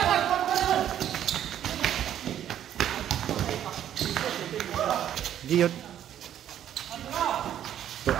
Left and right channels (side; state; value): left; quieter; 10.7 dB